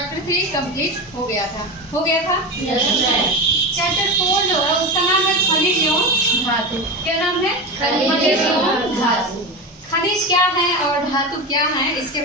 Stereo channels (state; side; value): normal; both; correlation 0.22